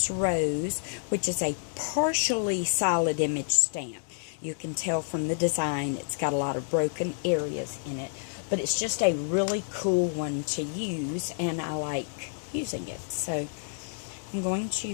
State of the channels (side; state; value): right; silent; digital silence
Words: rose, which is a partially solid image stamp. You can tell from the design it's got a lot of broken areas in it, but it's just a really cool one to use, and I like using it. So I'm going